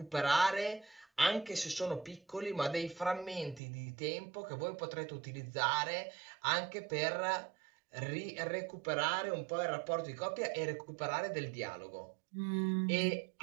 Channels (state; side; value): drops out; left; at 3.6 s